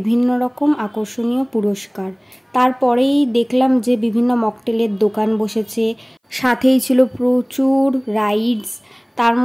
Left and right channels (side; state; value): both; identical; correlation 1.00